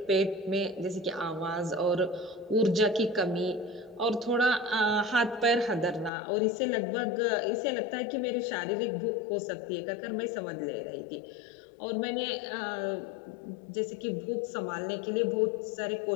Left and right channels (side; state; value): right; drops out; at 6.1 s